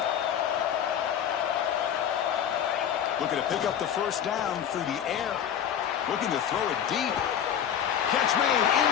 Looking to pick up the first down through the air. Looking to throw it deep. Catch made in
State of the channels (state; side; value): quieter; right; 9.1 dB